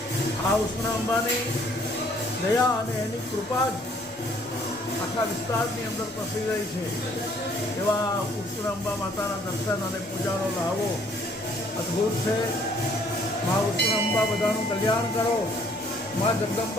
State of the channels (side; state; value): left; noise; rumble, 30 dB below the sound